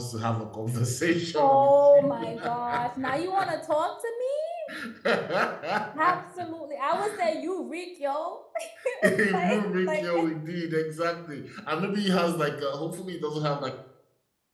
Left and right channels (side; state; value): both; identical; correlation 1.00